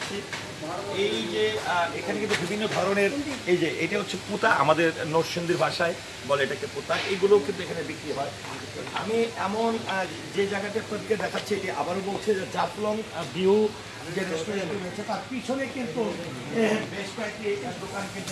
এই যে এখানে কিন্তু বিভিন্ন ধরনের, এই যে এটা হচ্ছে পুতা, আমাদের নরসিংদীর ভাষায় বলে এটাকে পুতা, এগুলো কিন্তু এখানে বিক্রি হয়। আমি এমন যে জায়গাটা আপনাদেরকে দেখাচ্ছি এটি আবারও বলছে যে জাফলং ভিউ যে রেস্টুরেন্ট রয়েছে তার পিছনে কিন্তু বেশ কয়েকটি দোকান কিন্তু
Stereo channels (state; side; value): identical; both; correlation 1.00